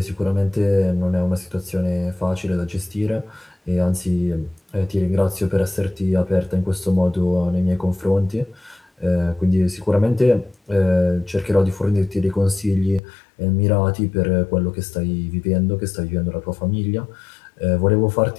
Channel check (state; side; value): drops out; right; at 13.0 s